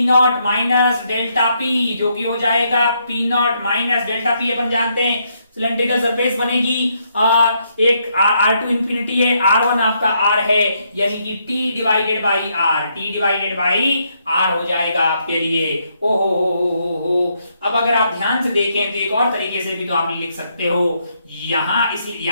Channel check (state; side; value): inverted; both; correlation -0.76